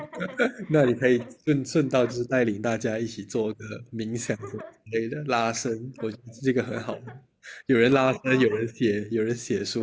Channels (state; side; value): identical; both; correlation 1.00